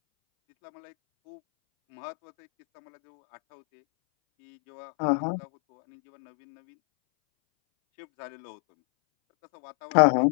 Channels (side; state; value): right; silent; 60 dB below the other